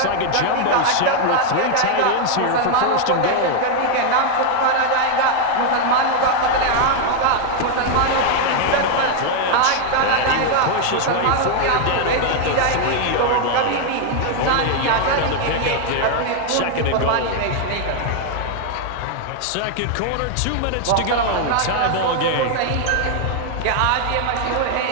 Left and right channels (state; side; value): different; both; correlation 0.00